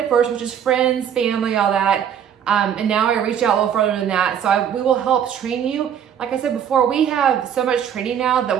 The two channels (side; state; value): left; quieter; 8.8 dB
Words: first, which is friends, family, all that. And now I reach out a little further than that. So we will help train you. Like I said before, we have so much training now that